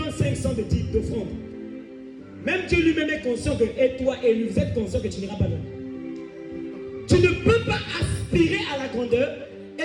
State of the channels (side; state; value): both; identical; correlation 1.00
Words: 500 d'offrande. Même Dieu lui-même est conscient que, et toi et lui, vous êtes conscient que tu n'iras pas loin. Tu ne peux pas aspirer à la grandeur